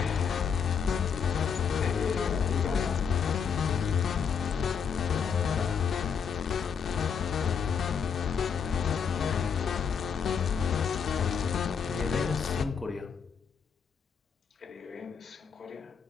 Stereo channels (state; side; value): quieter; right; 6.6 dB